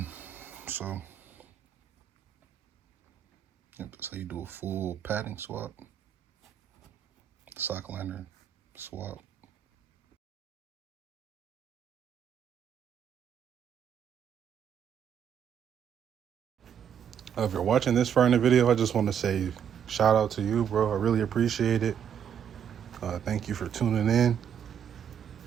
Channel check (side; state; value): left; quieter; 8.6 dB